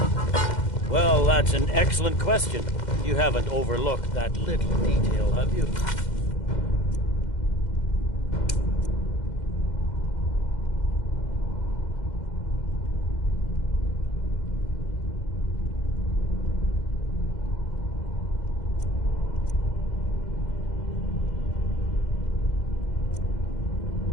Well, that's an excellent question. You haven't overlooked that little detail, have you?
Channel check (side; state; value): right; late; 2.1 ms